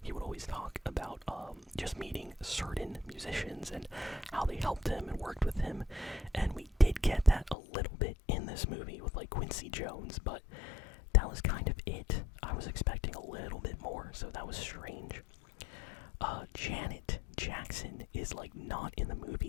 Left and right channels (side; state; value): right; drops out; at 7.6 s